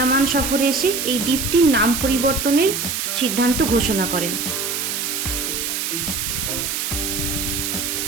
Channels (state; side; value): noise; right; hiss, 2 dB below the sound